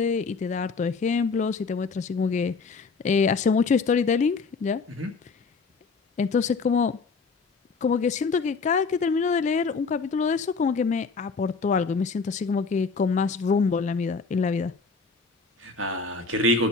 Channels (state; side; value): quieter; right; 4.6 dB